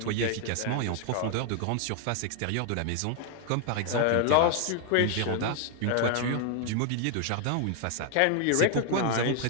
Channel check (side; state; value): both; different; correlation 0.00